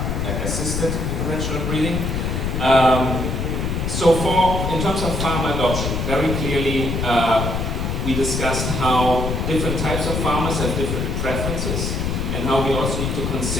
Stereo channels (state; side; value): noise; left; rumble, 1 dB below the sound